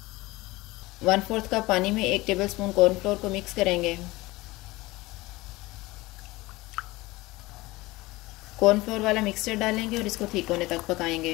1/4 कप पानी में 1 टेबलस्पून कॉर्नफ्लोर को मिक्स करेंगे। कॉर्नफ्लोर वाला मिक्सचर डालेंगे और इसको ठीक होने तक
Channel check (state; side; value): quieter; right; 20.4 dB